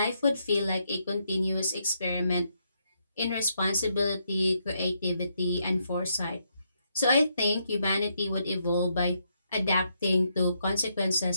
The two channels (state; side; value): inverted; both; correlation -0.77